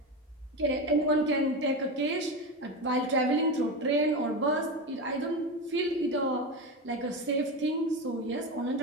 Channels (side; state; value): both; normal; correlation 0.19